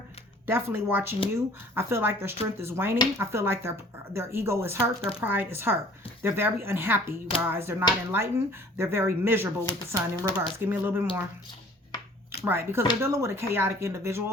Definitely watching you. I feel like their strength is waning. I feel like their ego is hurt. Their pride is hurt. They're very unhappy, you guys. They're not enlightened. They're very miserable with the sun in reverse. Give me a little bit more. Right, because they're dealing with a chaotic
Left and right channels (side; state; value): both; normal; correlation 0.52